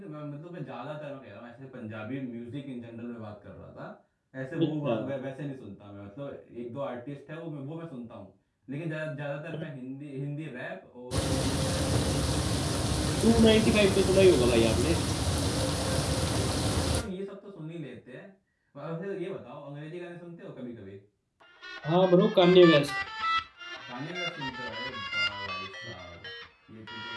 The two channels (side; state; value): both; identical; correlation 1.00